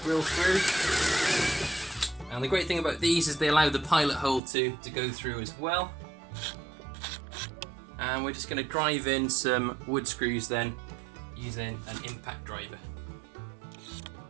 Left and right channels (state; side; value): drops out; left; at 4.4 s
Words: drill through. And the great thing about these is they allow the pilot hole to go through as well. And we're just going to drive in some wood screws then using an impact driver.